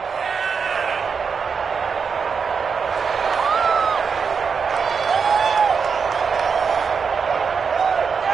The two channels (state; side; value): quieter; left; 5.9 dB